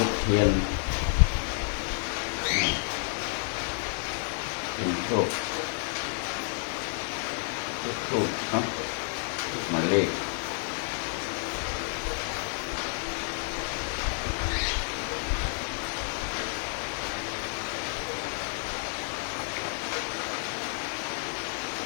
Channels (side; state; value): right; silent; 58 dB below the other